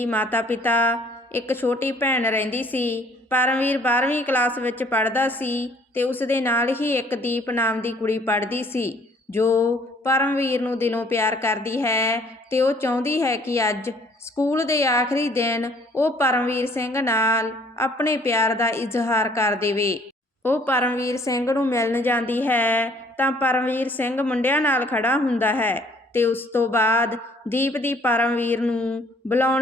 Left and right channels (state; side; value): normal; both; correlation 0.58